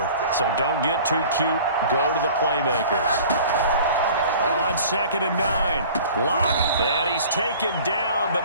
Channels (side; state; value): both; inverted; correlation -0.45